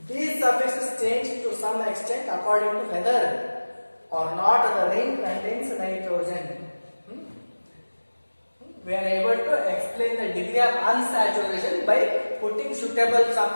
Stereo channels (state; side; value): inverted; both; correlation -1.00